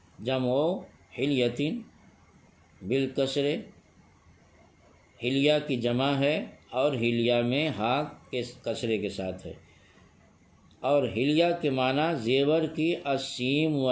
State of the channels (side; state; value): both; identical; correlation 1.00